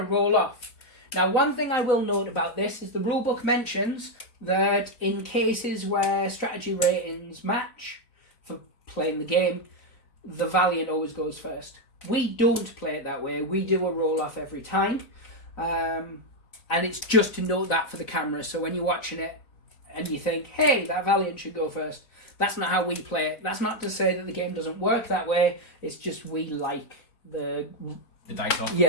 roll off. Now, one thing I will note about this is the rulebook mentions that in cases where strategy ratings match for playing the game, the Valiant always goes first. We don't play it that way. We do a roll-off every time. And it's just to note that for the camera. So when you're watching it and you think, hey, that Valiant should go first, that's not how we play it. That's not to say that the game doesn't work that way. It's just we like the dice off.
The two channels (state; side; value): late; right; 4.0 ms